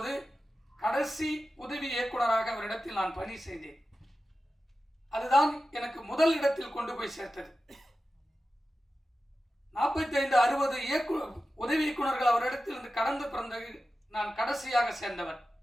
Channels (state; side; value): normal; both; correlation 0.93